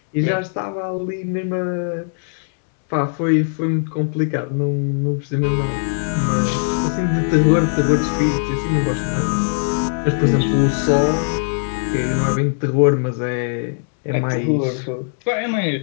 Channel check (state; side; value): silent; right; digital silence